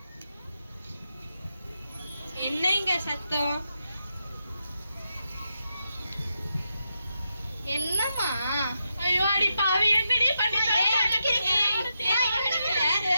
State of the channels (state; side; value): inverted; both; correlation -0.85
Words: என்னங்க சத்தம்? என்னம்மா? ஐயோ அடி பாவி என்னடி பண்ணிட்ட?